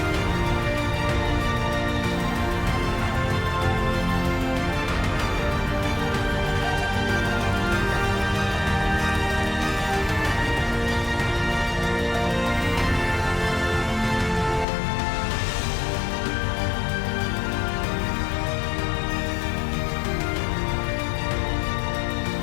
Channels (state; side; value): drops out; right; at 14.7 s